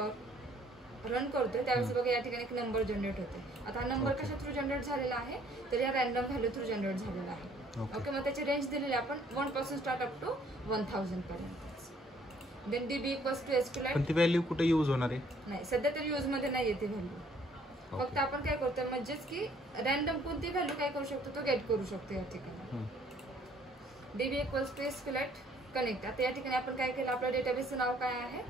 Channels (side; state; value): both; normal; correlation 0.61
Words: रन करतोय त्यावेळेस बघा या ठिकाणी एक नंबर जनरेट होते. आता हा नंबर कशा थ्रू जनरेट झालेला आहे, तर या रॅन्डम व्हॅल्यू थ्रू जनरेट झालेला आहे. ओके. मग त्याची रेंज दिलेली आपण 1 पासून स्टार्ट अप टू 1000 पर्यंत. Then DB equals to SQLite. पण ती व्हॅल्यू कुठे यूज होणार आहे, नाही सध्या तरी यूज मध्ये नाही येते व्हॅल्यू. फक्त आपण काय करतोय म्हणजेच की रॅन्डम कोणती व्हॅल्यू काय करू शकतो, तो गेट करू शकतो या ठिकाणी. DB equals to SQLite connect. आता या ठिकाणी आपण काय केलं, आपल्या डेटाबेसचं नाव काय आहे,